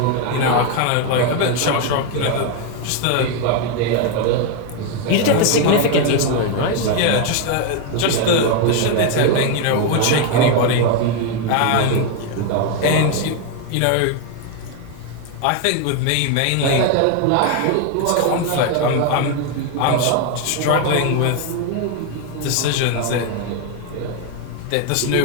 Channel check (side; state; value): both; different; correlation 0.01